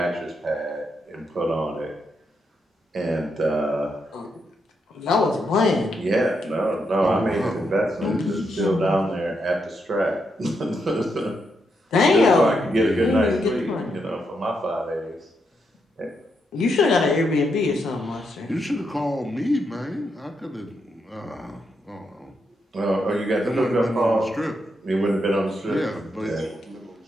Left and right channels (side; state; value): both; normal; correlation 0.81